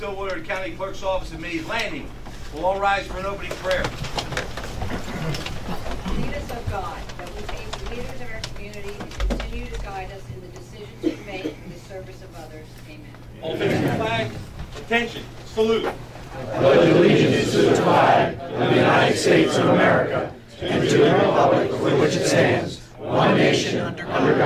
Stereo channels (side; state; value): both; identical; correlation 1.00